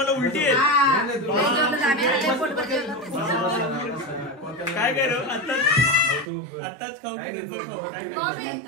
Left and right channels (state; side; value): drops out; left; at 6.3 s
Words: उलटी आहे. काय करू आताच खाऊ की नंतर खाऊ, काय करू?